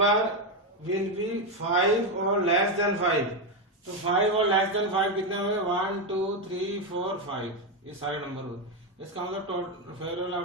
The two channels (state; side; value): normal; both; correlation 0.08